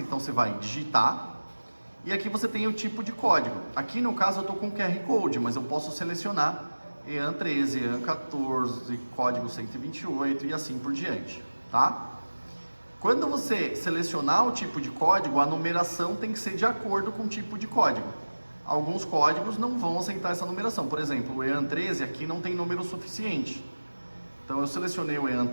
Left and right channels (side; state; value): both; inverted; correlation -1.00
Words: você vai digitar. E aqui você tem o tipo de código. Aqui no caso eu estou com QR Code, mas eu posso selecionar EAN 13, EAN 14, código 128 e assim por diante, tá? Quando você selecionar o tipo de código, a numeração tem que ser de acordo com o tipo de código. Alguns códigos não vão aceitar essa numeração. Por exemplo, o EAN 13 aqui não tem número suficiente. Então eu selecionei o EAN